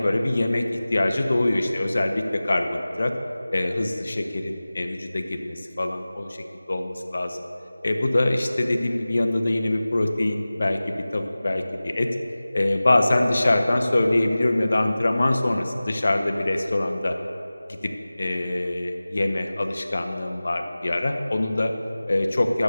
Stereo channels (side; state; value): both; inverted; correlation -0.98